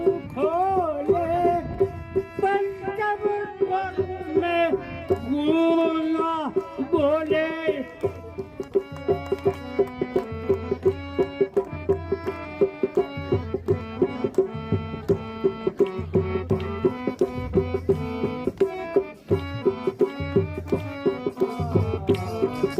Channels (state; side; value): identical; both; correlation 1.00